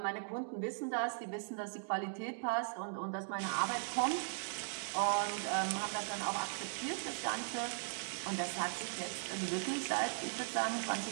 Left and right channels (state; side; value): silent; left; digital silence